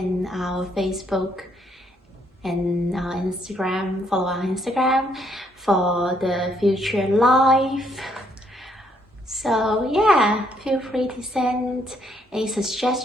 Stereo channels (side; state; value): both; normal; correlation 0.71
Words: our Facebook and our Instagram. Follow our Instagram for the future live. So yeah, feel free to send a